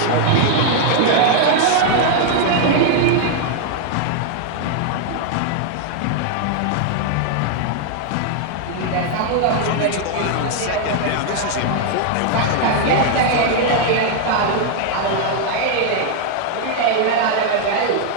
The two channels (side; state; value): both; different; correlation 0.00